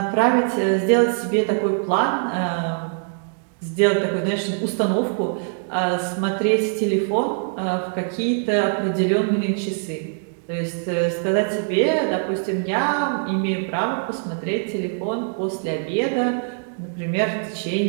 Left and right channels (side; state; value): left; silent; 64 dB below the other